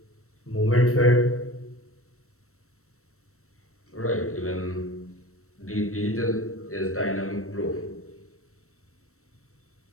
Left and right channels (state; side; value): late; right; 0.63 ms